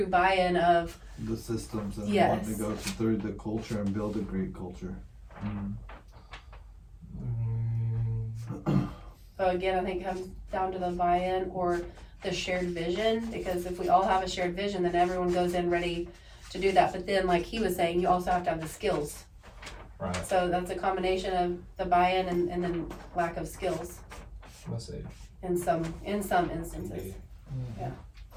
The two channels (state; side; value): identical; both; correlation 1.00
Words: buy-in of the systems and Yes. wanting to go through the culture and build a great culture. so again, I think it comes down to the buy-in or the shared vision, because if we all have a shared vision, then everyone goes in ready to do that. But then, like he was saying, you also have to have the skills. Right. So that's a combination of the buy-in and then lack of skills Let's see. in some instances. Yeah.